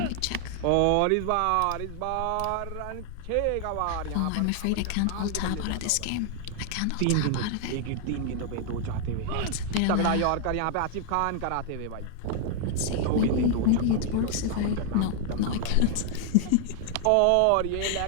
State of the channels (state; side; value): different; both; correlation 0.00